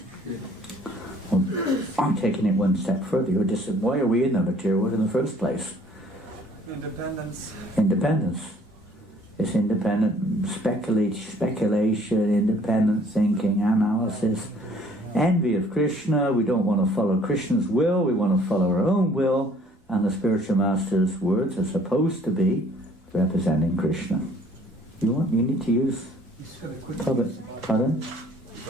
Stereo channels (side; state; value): both; normal; correlation 0.57